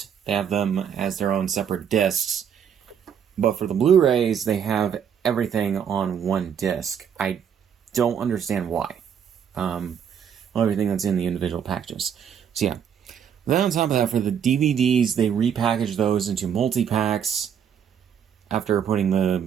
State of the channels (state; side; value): quieter; left; 8.2 dB